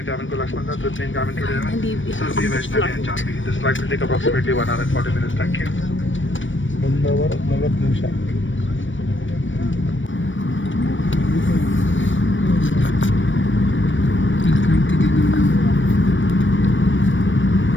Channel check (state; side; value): late; right; 0.56 ms